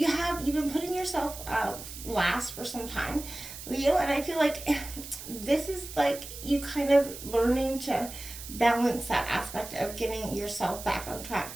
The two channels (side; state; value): right; noise; hiss, 12 dB below the sound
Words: been putting yourself last for some time, Leo, and I feel like this is like you kind of learning to balance that aspect of getting yourself back on track,